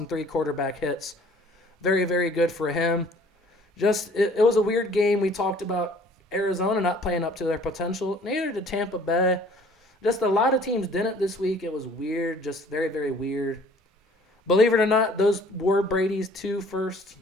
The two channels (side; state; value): both; normal; correlation 0.54